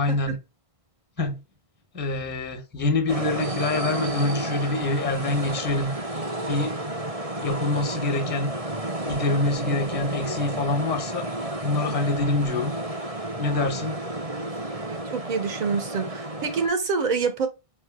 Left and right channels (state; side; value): late; left; 1.5 ms